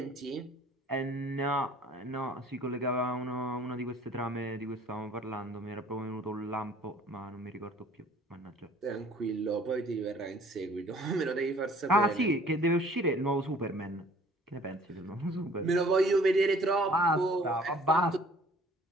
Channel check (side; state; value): both; normal; correlation 0.54